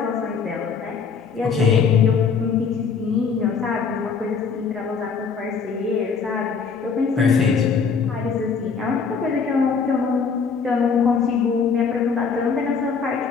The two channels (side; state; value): right; quieter; 5.7 dB